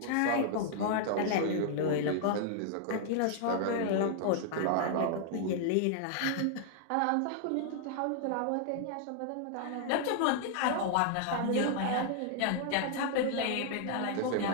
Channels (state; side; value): different; both; correlation -0.01